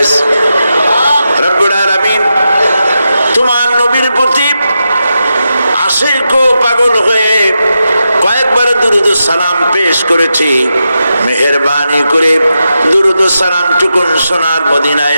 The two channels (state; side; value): inverted; both; correlation -0.88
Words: রব্বুল আলামিন তোমার নবীর প্রতি আশিকো পাগল হয়ে কয়েকবার দুরুদ সালাম পেশ করেছি। মেহেরবানি করে দুরুদ সালাম টুকুন সোনার